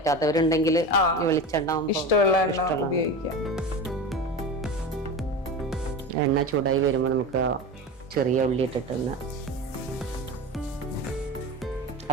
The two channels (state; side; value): normal; both; correlation 0.28